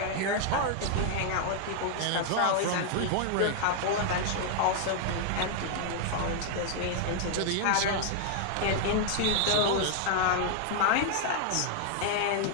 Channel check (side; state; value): both; different; correlation 0.00